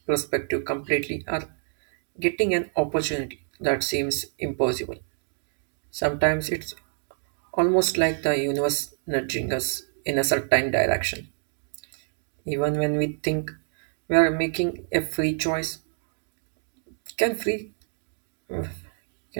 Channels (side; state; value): left; silent; digital silence